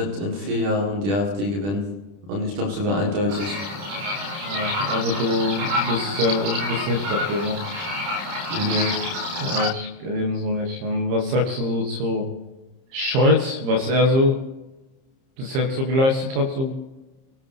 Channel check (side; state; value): left; late; 30 ms